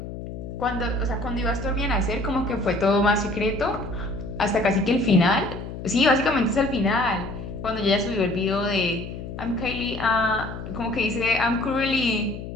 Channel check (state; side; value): noise; left; hum, 9 dB below the sound